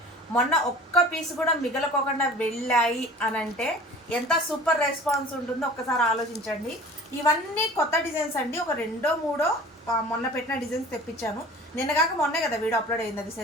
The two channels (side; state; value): both; normal; correlation 0.43